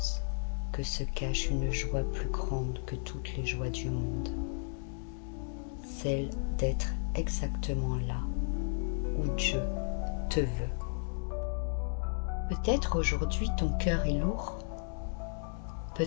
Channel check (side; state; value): right; silent; digital silence